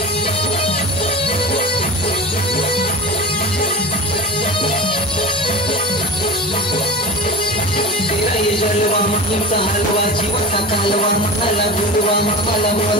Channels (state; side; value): normal; both; correlation 0.31